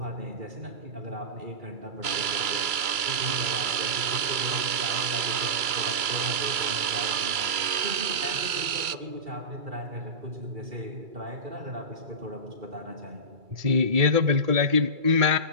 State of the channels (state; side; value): late; left; 2.3 ms